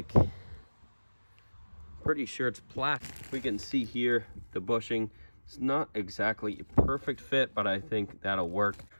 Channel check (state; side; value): inverted; both; correlation -1.00